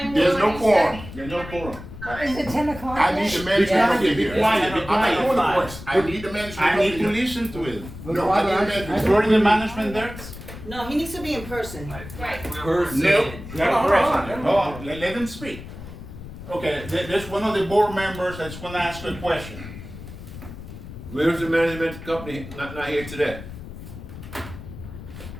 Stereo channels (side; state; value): left; noise; rumble, 13 dB below the sound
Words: There's will no you quorum. There's no quorum. Is it 10 o'clock? I need the management Yeah. company here. Be quiet, be I'm not quiet. doing the voice. I need the management I company need to here. listen to it. No, I need the management. Is already the management there? No, he needs to be in person. Right. Person. No. Hold on, Hold on, let them speak. Okay, there's one of the board members that's gonna ask a question. Where's the management company not here today?